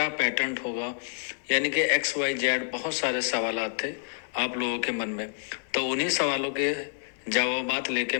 पैटर्न होगा, यानी कि XYZ बहुत सारे सवाल थे आप लोगों के मन में। तो उन्हीं सवालों के जवाबात लेके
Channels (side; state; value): right; silent; digital silence